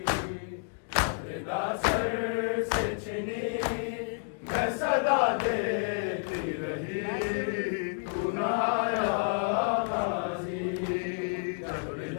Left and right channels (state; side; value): silent; right; digital silence